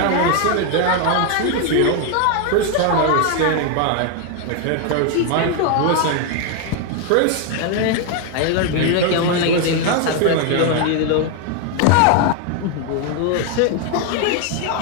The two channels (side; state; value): both; different; correlation 0.01